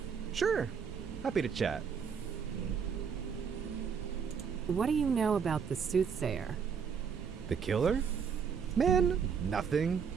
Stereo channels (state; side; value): quieter; left; 6.6 dB